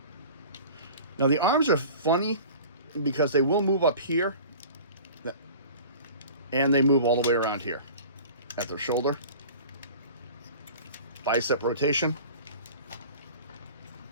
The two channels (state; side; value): inverted; both; correlation -0.41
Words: Now the arms are funny because they will move up here, and they move all the way around here at their shoulder. Bicep rotation.